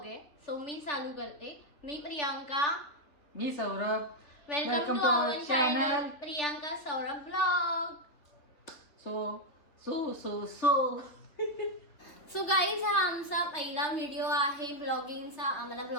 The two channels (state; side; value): late; right; 3.4 ms